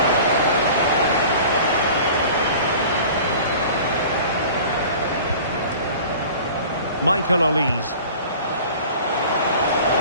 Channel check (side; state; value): both; inverted; correlation -0.42